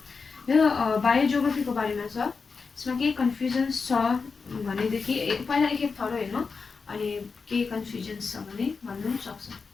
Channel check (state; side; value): quieter; right; 4.9 dB